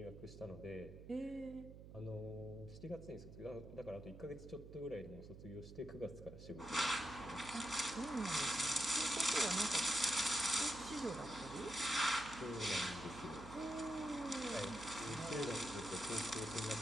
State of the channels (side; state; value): right; noise; hum, 14 dB below the sound